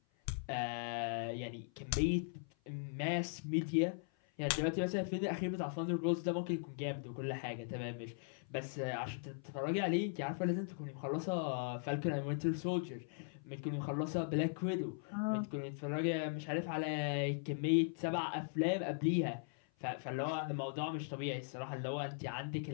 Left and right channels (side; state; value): right; silent; 52 dB below the other